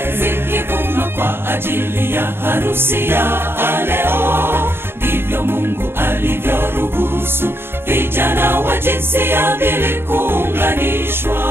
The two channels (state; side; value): late; left; 0.11 ms